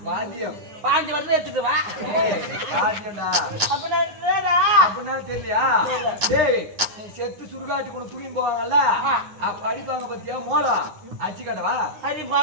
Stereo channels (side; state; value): left; late; 9.8 ms